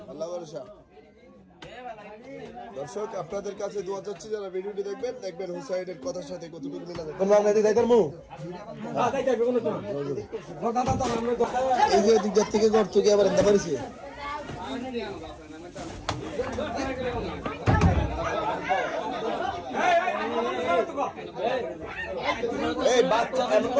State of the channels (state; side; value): identical; both; correlation 1.00